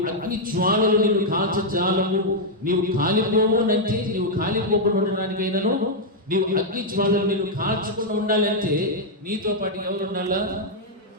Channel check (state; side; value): normal; both; correlation -0.03